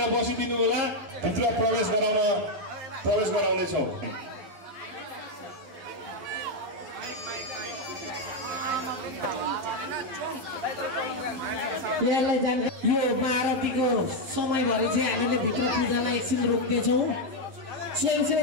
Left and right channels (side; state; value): left; late; 11 ms